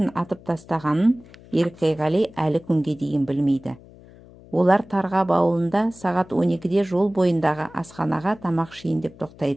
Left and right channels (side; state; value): left; noise; hum, 22 dB below the sound